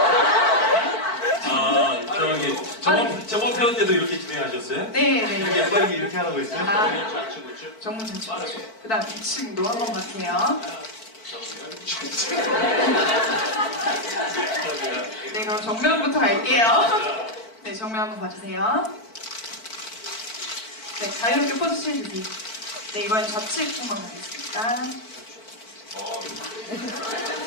저번 편 때도 이렇게 진행하셨어요? 네. 이렇게 빠르게 이렇게 하라고 했어요? 정면 좌측 우측. 그 다음 2층도 한번 봐주세요. 네, 그럼 정면부터 갈게요. 네, 정면 한번 봐주세요. 네, 자유롭게 포즈취해 주세요. 네, 이번엔 좌측 한번 가겠습니다.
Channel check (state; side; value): late; right; 4.5 ms